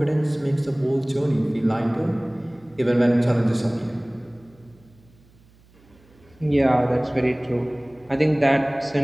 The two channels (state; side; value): noise; right; hum, 29 dB below the sound